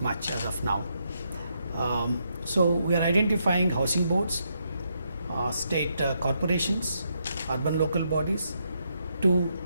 as of now. So, we are identifying housing boards, state corporations, urban local bodies to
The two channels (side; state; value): both; inverted; correlation -0.79